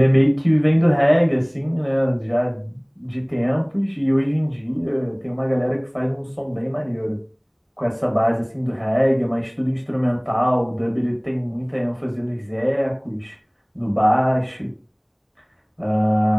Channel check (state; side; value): identical; both; correlation 1.00